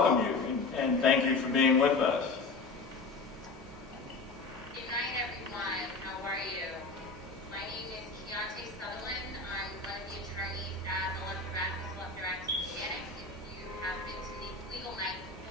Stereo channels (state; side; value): quieter; right; 3.7 dB